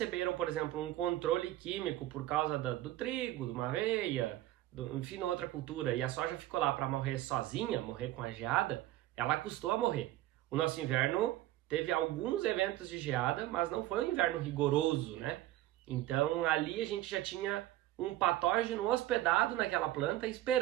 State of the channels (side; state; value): left; quieter; 15.2 dB